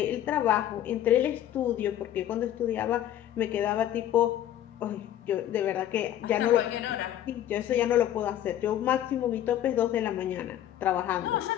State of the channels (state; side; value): quieter; right; 11.7 dB